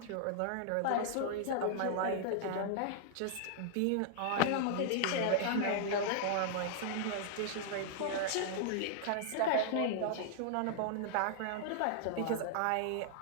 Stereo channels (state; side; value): different; both; correlation -0.01